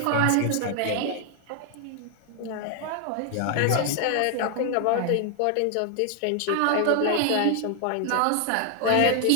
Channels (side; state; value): both; different; correlation 0.00